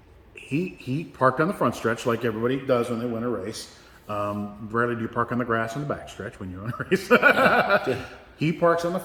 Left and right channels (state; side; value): identical; both; correlation 1.00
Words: he parked on the front stretch like everybody does when they win a race. Rarely do you park on the grass on the back stretch when you win a race. He parks on the